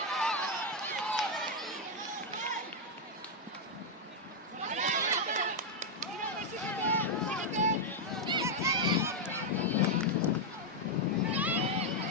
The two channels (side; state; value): both; normal; correlation 0.00